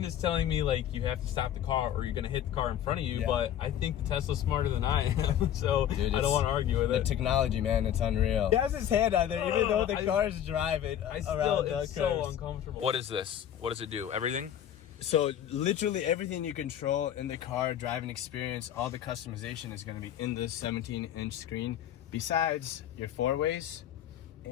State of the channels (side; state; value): right; quieter; 10.5 dB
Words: is telling me like you have to stop the car or you're going to hit the car in front of you, Yeah. but I think the Tesla's smarter than I am, so Dude, I don't want to argue with The it. technology, man, it's unreal. He has his hand out there, even though the car is driving around the It's so curves. uncomfortable. What is this? What does it do? Everything? So literally everything you control in the car driving experience, all the customization is going to be in this 17-inch screen. Besides your four ways,